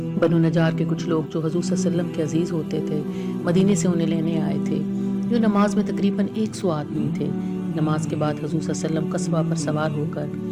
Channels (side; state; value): both; identical; correlation 1.00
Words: بنو نجار کے کچھ لوگ جو حضور صلی اللہ علیہ وسلم کے عزیز ہوتے تھے مدینے سے انہیں لینے آئے تھے۔ جو نماز میں تقریباً 100 آدمی تھے۔ نماز کے بعد حضور صلی اللہ علیہ وسلم قصبہ پر سوار ہو کر